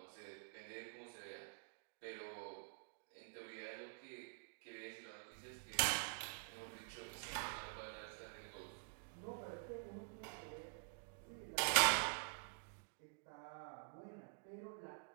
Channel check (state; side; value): silent; left; digital silence